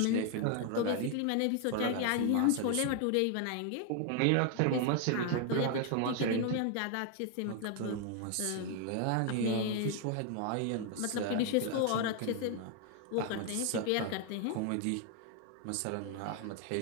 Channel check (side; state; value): both; different; correlation 0.00